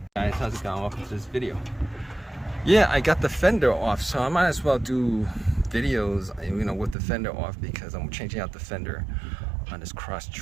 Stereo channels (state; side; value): drops out; left; at 7.0 s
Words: how's it going? Welcome to this video. Yeah, I got the fender off, so I might as well do videos, with the fender off, because I'm changing out the fender on this